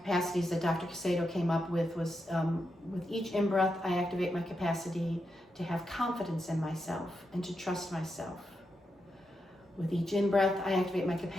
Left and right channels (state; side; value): normal; both; correlation 0.85